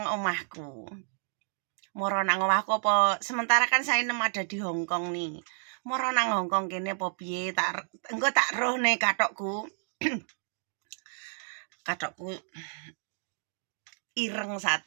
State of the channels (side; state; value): left; silent; digital silence